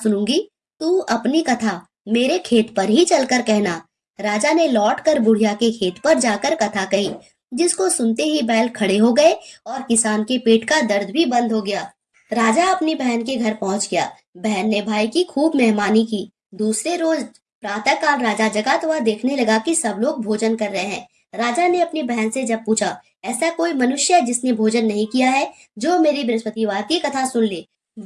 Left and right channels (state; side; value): identical; both; correlation 1.00